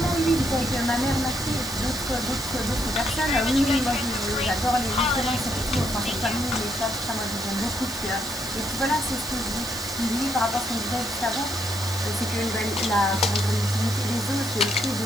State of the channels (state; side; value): noise; left; hiss, 13 dB below the sound